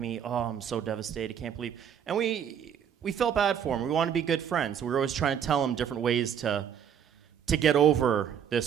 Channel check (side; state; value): left; quieter; 8.6 dB